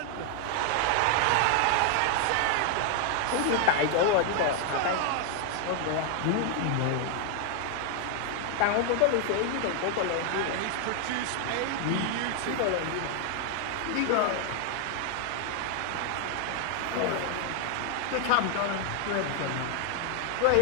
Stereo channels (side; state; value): both; different; correlation 0.00